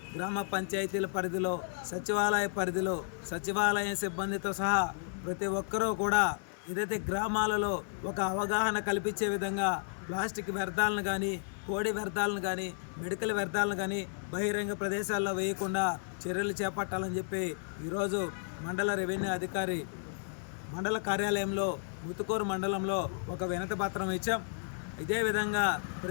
గ్రామ పంచాయతీల పరిధిలో, సచివాలయ పరిధిలో, సచివాలయ సిబ్బందితో సహా ప్రతి ఒక్కరూ కూడా ఏదైతే గ్రామాలలో ఒక అవగాహన కల్పించే విధంగా ప్లాస్టిక్ వ్యర్థాలను కానీ, కోడి వ్యర్థాలను కానీ, మెడికల్ వ్యర్థాలను కానీ బహిరంగ ప్రదేశాల్లో వేయకుండా చర్యలు చేపట్టాలని చెప్పి ఈరోజు మండల రెవెన్యూ అధికారి మండల కార్యాలయంలో ముతుకూరు మండలంలో ఒక వినతి పత్రం ఇచ్చాం. ఇదే విధంగా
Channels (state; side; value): silent; right; 55 dB below the other